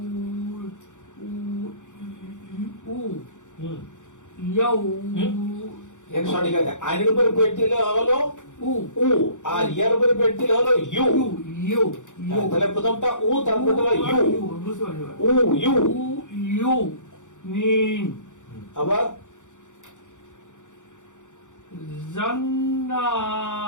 উ হুম, ইয়াউ এটা সঠিক আছে। আইনের উপরে পেট দিলে হলো উ উ, আর ইয়ার উপরে পেট দিলে হলো ইউ। ইউ ইউ তাহলে প্রথমটা উ, তারপরে হলো ইউ। বুঝতে পারছি। উ ইউ। উ ইউ নিন আবার জান্নাতিউ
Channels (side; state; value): right; late; 0.86 ms